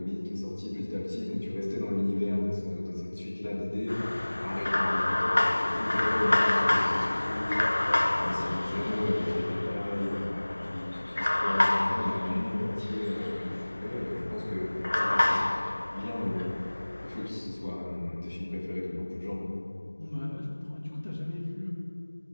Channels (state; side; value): inverted; both; correlation -1.00